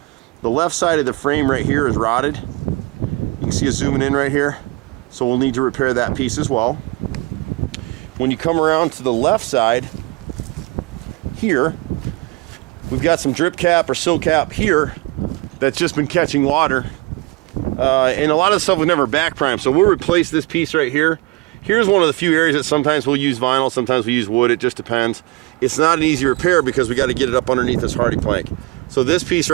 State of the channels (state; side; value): quieter; left; 23.2 dB